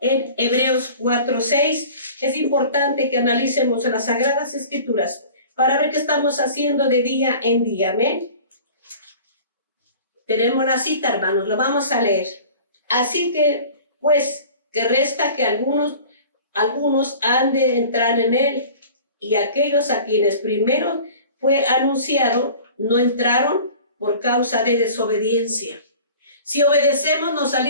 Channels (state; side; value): inverted; both; correlation -0.42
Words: en Hebreos 4:6. Es importante que analicemos en las Sagradas Escrituras para ver qué estamos haciendo de día en día. Amén. Tenemos la cita, hermanos, lo vamos a leer. Así que, pues, que resta que algunos han de entrar en él, y aquellos a quienes primero fue anunciado no entraron por causa de desobediencia. Si obedecemos, nos